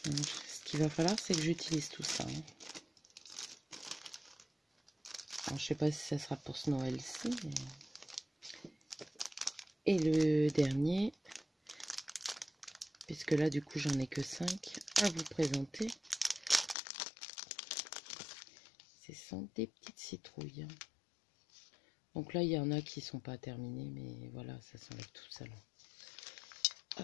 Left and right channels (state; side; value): drops out; right; at 16.8 s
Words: Donc, ce qu'il va falloir, c'est que j'utilise tout ça. Alors, je sais pas si ça sera pour ce Noël-ci. Mais... Et le dernier, puisque là, du coup, j'en ai que 5 à vous présenter. Ce sont des petites citrouilles. Donc là, il y en a qui sont pas terminés, mais voilà, ça s'enlève tout seul.